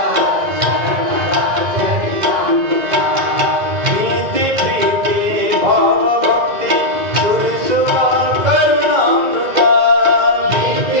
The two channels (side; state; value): left; late; 2.0 ms